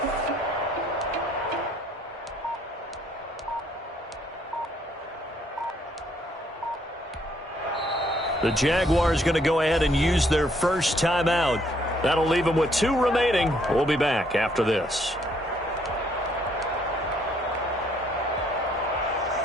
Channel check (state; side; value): normal; both; correlation 0.67